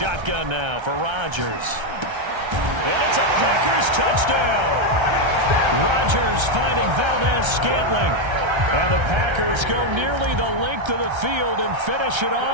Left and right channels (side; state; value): left; late; 1.3 ms